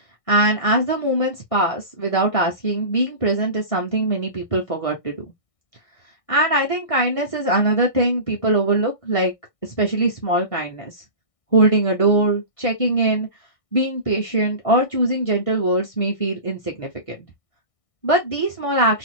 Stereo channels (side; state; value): right; late; 1.6 ms